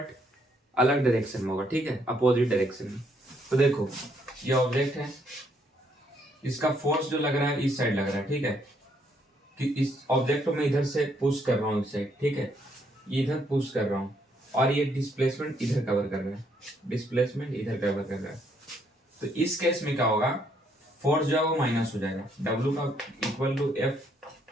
अलग डायरेक्शन में होगा, ठीक है, अपोजिट डायरेक्शन में। तो देखो ये ऑब्जेक्ट है, इसका फोर्स जो लग रहा है इस साइड लग रहा है, ठीक है। कि इस ऑब्जेक्ट को मैं इधर से पुश कर रहा हूँ इस साइड, ठीक है, ये इधर पुश कर रहा हूँ और ये डिस्प्लेसमेंट इधर कवर कर रहा है, डिस्प्लेसमेंट इधर कवर कर रहा है। तो इस केस में क्या होगा, फोर्स जो है वो माइनस हो जाएगा, W का equal to F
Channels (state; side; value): normal; both; correlation 0.71